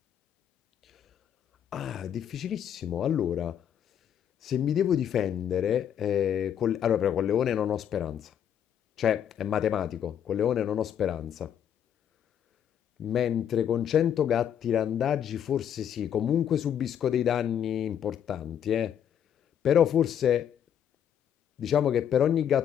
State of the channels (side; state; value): right; quieter; 9.3 dB